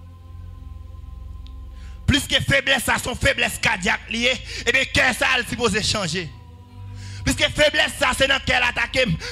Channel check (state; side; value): identical; both; correlation 1.00